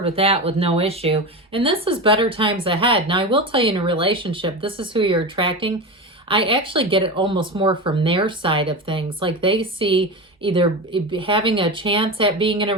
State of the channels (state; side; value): normal; both; correlation 0.23